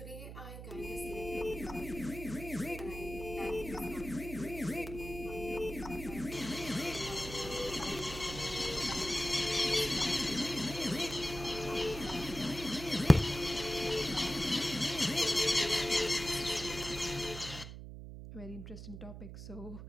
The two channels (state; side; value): noise; right; hum, 10 dB below the sound